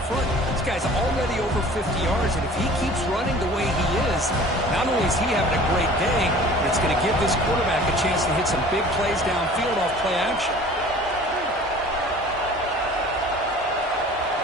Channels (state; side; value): normal; both; correlation 0.46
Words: front. This guy's already over 50 yards, and if he keeps running the way he is, not only is he having a great day, but it's going to give this quarterback a chance to hit some big plays downfield off play action.